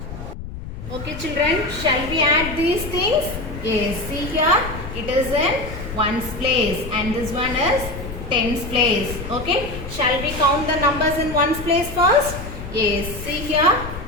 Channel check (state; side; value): noise; left; rumble, 9 dB below the sound